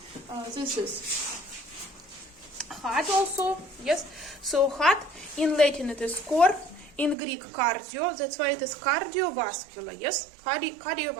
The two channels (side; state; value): left; drops out; at 7.2 s